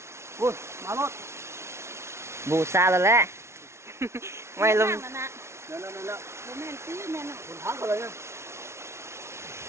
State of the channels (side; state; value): left; late; 0.13 ms